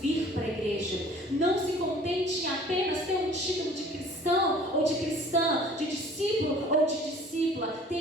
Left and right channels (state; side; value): normal; both; correlation 0.50